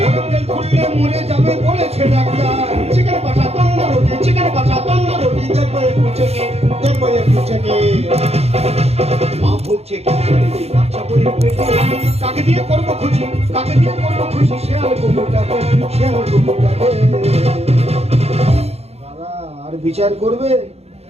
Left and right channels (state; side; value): late; left; 0.30 ms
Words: বেল খুললে মরে যাবে বলেছে ডাক্তার। চিকেন কষা তন্দুর রুটি, চিকেন কষা তন্দুর রুটি, দেখবো একটু চেকে, দেখবো একটু চেকে। মা ভুগছে ক্যান্সারে, বাচ্চা বইয়ের পেটে, কাকে দিয়ে করবো খুশি? কাকে দিয়ে করবো খুশি? শিয়াল কুকুরটাকে, শিয়াল কুকুরটাকে। দাদা আর বিচার করবে?